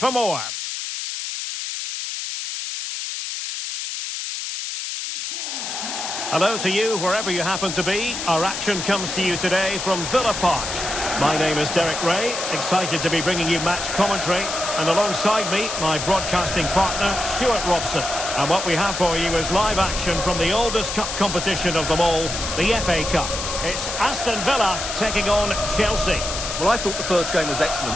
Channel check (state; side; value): noise; left; hiss, 5 dB below the sound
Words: more. Hello to you, wherever you happen to be. Our action comes to you today from Villa Park. My name is Derek Ray, excited to be bringing you match commentary, and alongside me, my broadcasting partner, Stuart Robson. And what we have for you is live action from the oldest cup competition of them all, the FA Cup. It's Aston Villa taking on Chelsea. Well, I thought the first game was